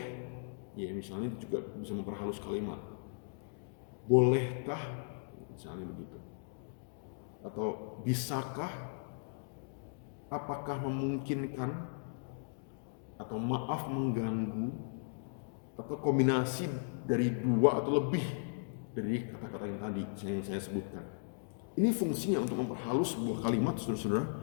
ya misalnya juga bisa memperhalus kalimat. Bolehkah, misalnya begitu. Atau bisakah, apakah memungkinkan, atau maaf mengganggu, atau kombinasi dari dua atau lebih dari kata-kata yang tadi yang saya sebutkan. Ini fungsinya untuk memperhalus sebuah kalimat, saudara-saudara,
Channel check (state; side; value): silent; right; digital silence